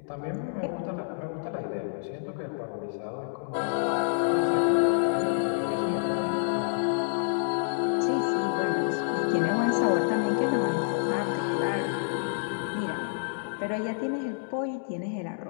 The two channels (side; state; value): right; silent; digital silence